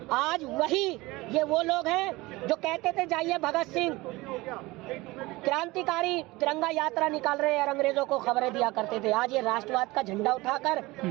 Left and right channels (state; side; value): quieter; left; 21.1 dB